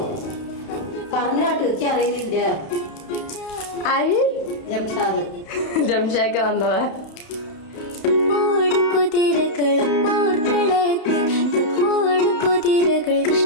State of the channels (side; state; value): right; late; 31 ms